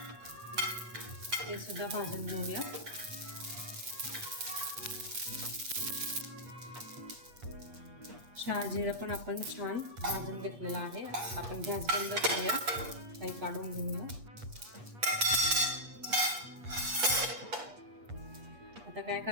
ते सुद्धा भाजून घेऊया. शहाजिरं पण आपण छान भाजून घेतलेलं आहे. आपण गॅस बंद करूया, काही काढून घेऊया. आता काय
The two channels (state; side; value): late; left; 8.4 ms